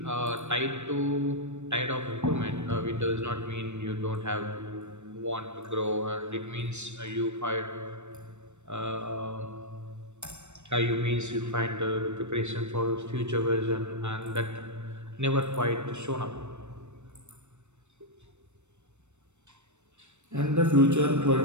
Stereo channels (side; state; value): left; late; 0.83 ms